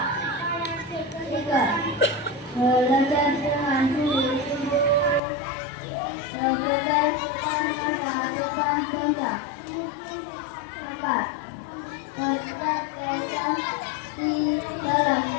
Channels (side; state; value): right; drops out; at 5.2 s